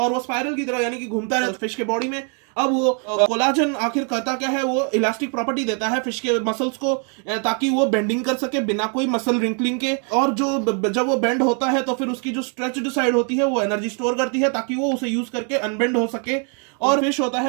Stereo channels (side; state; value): left; quieter; 39.3 dB